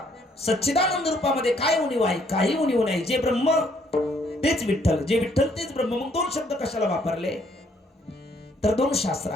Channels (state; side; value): normal; both; correlation 0.67